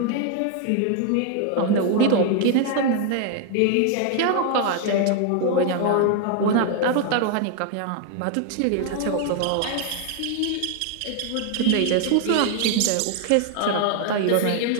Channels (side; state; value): both; different; correlation 0.00